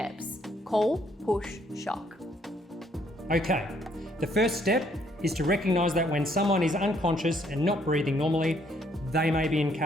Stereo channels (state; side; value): normal; both; correlation 0.68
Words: call, push, shock. Okay, the first step is to recognise that when someone is unconscious and not breathing normally, they may be in